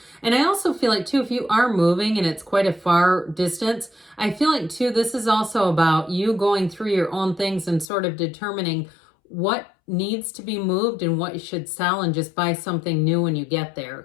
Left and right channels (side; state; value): right; drops out; at 7.9 s